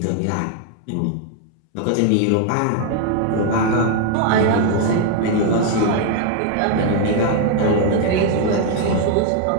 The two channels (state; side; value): different; both; correlation 0.00